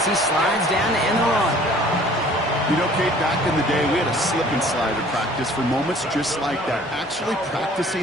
he slides down to end the run. You know, Kate, back in the day, we had a slip and slide at practice for moments just like that, actually practicing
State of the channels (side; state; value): both; normal; correlation 0.52